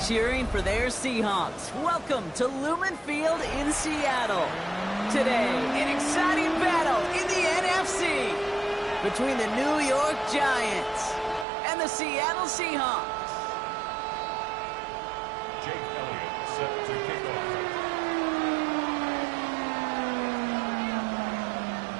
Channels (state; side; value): drops out; left; at 11.5 s